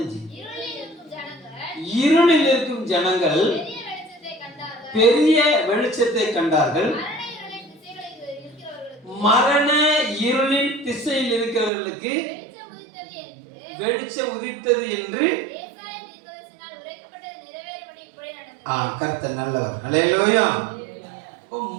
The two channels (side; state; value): left; drops out; at 11.7 s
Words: இருளில் இருக்கும் ஜனங்கள் பெரிய வெளிச்சத்தை கண்டார்கள். மரண இருளின் திசையில் இருக்கிறவர்களுக்கு வெளிச்சம் உதித்தது என்று கர்த்தர் நல்லவர். அல்லேலூயா.